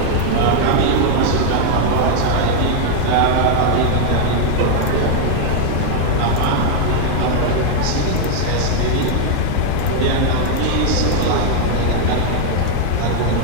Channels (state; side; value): different; both; correlation 0.00